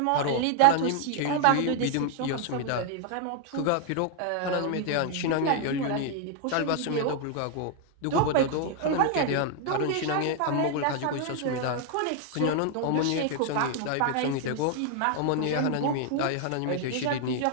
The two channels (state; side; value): different; both; correlation 0.00